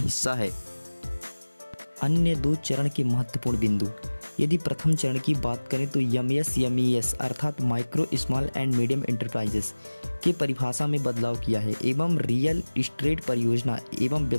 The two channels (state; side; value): inverted; both; correlation -1.00